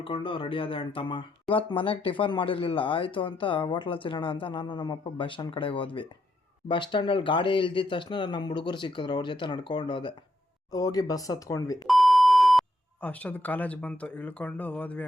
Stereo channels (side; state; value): both; normal; correlation 0.78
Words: ರೆಡಿ ಆದೆ ಅಣ್ತಮ್ಮ. ಇವತ್ತು ಮನೆಗೆ ಟಿಫನ್ ಮಾಡಿರ್ಲಿಲ್ಲ, ಆಯ್ತು ಅಂತ ಹೋಟ್ಲಲ್ಲಿ ತಿನ್ನೋಣ ಅಂತ ನಾನು ನಮ್ಮಪ್ಪ ಬಸ್ ಸ್ಟ್ಯಾಂಡ್ ಕಡೆಗೆ ಹೋದ್ವಿ. ಬಸ್ ಸ್ಟ್ಯಾಂಡಲ್ಲಿ ಗಾಡಿ ಇಳ್ದಿದ ತಕ್ಷಣ ನಮ್ಮ ಹುಡುಗರು ಸಿಕ್ಕಿದ್ರು, ಅವ್ರ ಜೊತೆ ನಡ್ಕೊಂಡು ಹೋದೆ. ಹೋಗಿ ಬಸ್ ಹತ್ಕೊಂಡ್ವಿ. ಅಷ್ಟೊಂದು ಕಾಲೇಜ್ ಬಂತು, ಇಳ್ಕೊಂಡು ಹೋದ್ವಿ